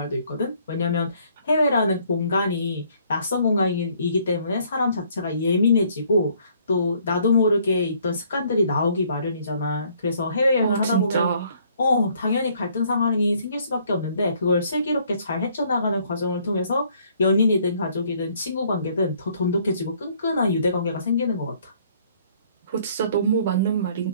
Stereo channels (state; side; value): inverted; both; correlation -0.63